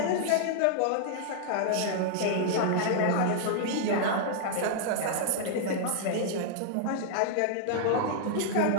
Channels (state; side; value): different; both; correlation -0.01